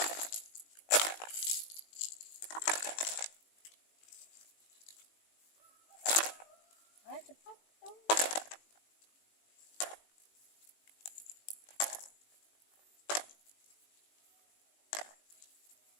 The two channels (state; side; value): late; right; 19 ms